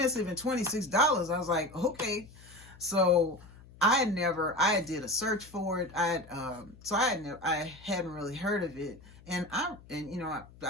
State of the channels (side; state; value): left; noise; hum, 22 dB below the sound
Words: and $26, I was like, okay. So I did a search for it. I hadn't really heard of it, and I